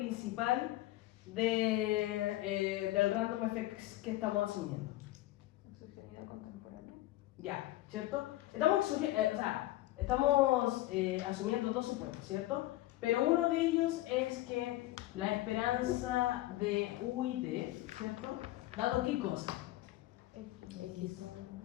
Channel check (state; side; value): quieter; right; 16.5 dB